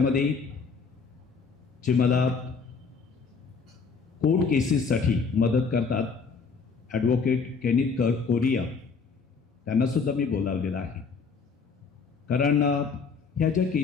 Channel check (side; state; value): right; quieter; 5.2 dB